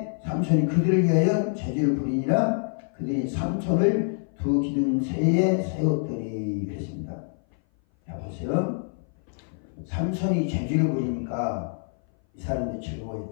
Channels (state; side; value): silent; right; 58 dB below the other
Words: 삼손이 그들을 위하여 제주를 부리니라. 그들이 삼손을 두 기둥새에 세웠더니 그랬습니다. 자 보세요. 삼손이 제주를 부리니까 이 사람들이